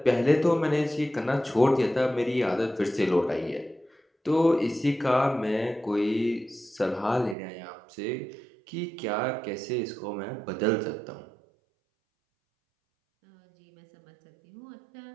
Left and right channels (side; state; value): left; drops out; at 7.4 s